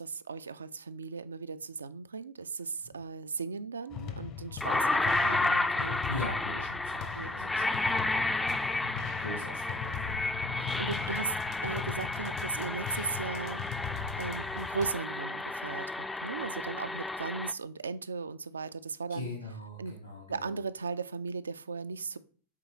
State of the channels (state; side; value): normal; both; correlation 0.39